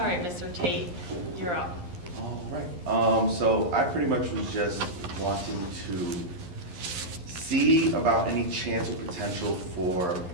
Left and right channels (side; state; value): left; late; 11 ms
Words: right, Mr. Tate, you're up. All right. So I pretty much was just wanting to see about any chance or potential for